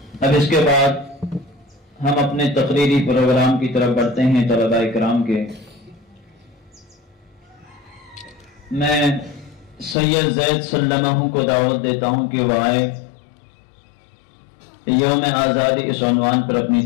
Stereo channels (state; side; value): drops out; right; at 10.0 s